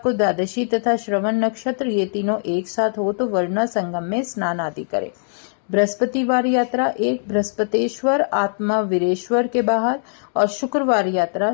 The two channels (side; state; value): right; silent; digital silence